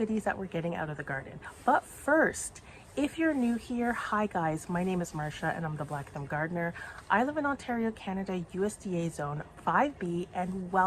that we're getting out of the garden. But first, if you're new here, hi guys, my name is Marsha and I'm the Black Thumb Gardener. I live in Ontario, Canada, USDA Zone 5B, and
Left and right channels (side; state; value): both; identical; correlation 1.00